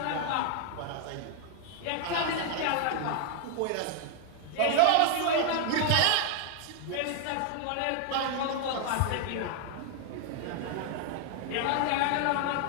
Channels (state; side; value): different; both; correlation 0.00